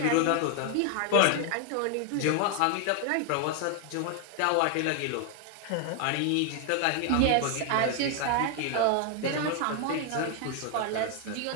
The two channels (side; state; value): both; different; correlation 0.00